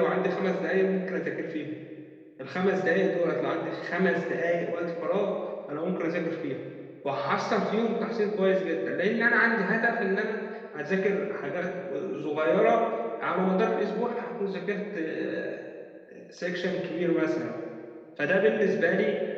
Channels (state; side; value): identical; both; correlation 1.00